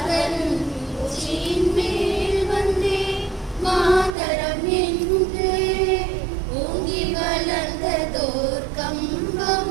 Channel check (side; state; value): left; drops out; at 4.2 s